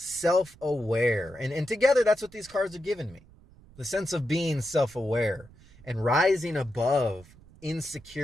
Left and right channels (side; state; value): right; noise; rumble, 24 dB below the sound